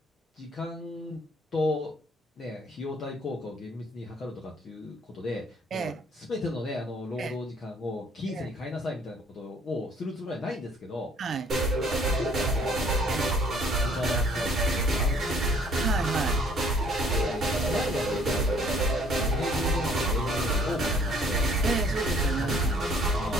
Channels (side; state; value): both; normal; correlation 0.59